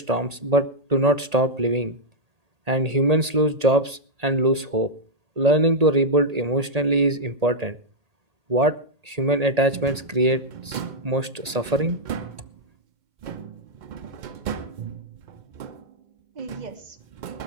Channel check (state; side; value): late; left; 1.8 ms